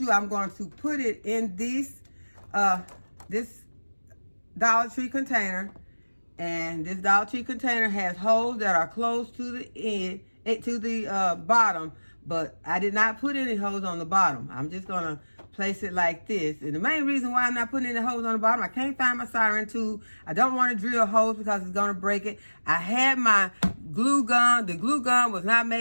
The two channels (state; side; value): inverted; both; correlation -1.00